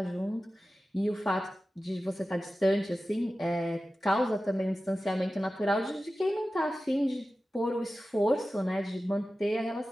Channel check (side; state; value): both; normal; correlation 0.94